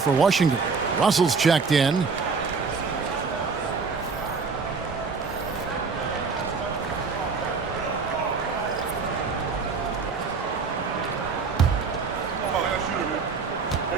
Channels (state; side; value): quieter; left; 4.9 dB